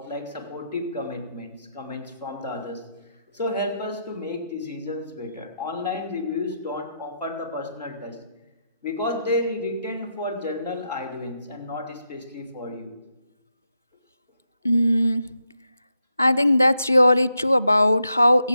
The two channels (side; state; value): both; inverted; correlation -0.83